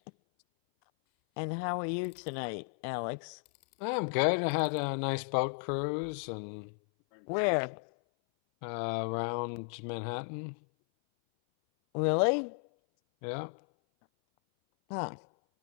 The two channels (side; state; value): right; silent; 55 dB below the other